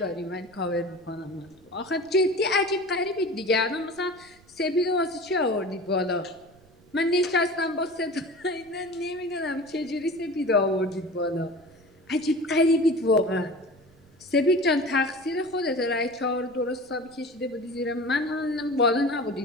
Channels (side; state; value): right; noise; rumble, 28 dB below the sound